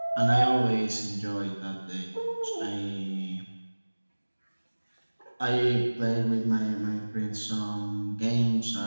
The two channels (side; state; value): both; inverted; correlation -1.00